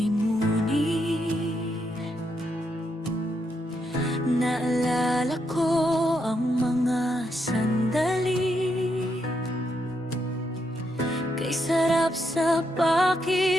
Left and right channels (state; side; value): normal; both; correlation 0.79